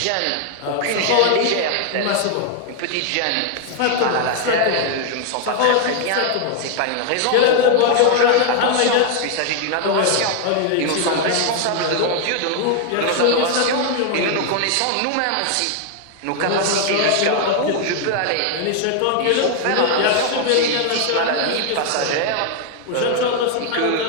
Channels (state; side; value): different; both; correlation 0.00